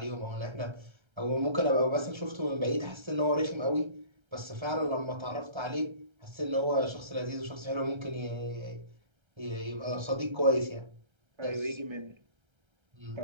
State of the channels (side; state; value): left; late; 1.3 ms